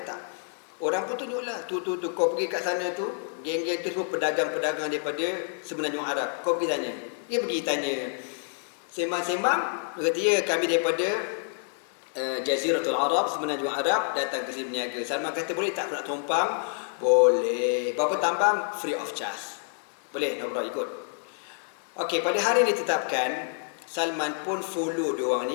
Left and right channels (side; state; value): right; silent; 59 dB below the other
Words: tak? Orang pun tunjuklah, tu kau pergi kat sana tu, geng-geng tu semua pedagang-pedagang daripada Semenanjung Arab. Kau pergi tanya. Dia pergi tanya, sembang-sembang, dia kata, ya kami daripada Jaziratul Arab, Semenanjung Arab, datang ke sini berniaga. Salman kata, boleh tak aku nak tumpang? Boleh. Berapa tambang? Free of charge. Boleh, nak berapa ikut. Okey, pada hari ini ditetapkan, Salman pun follow diorang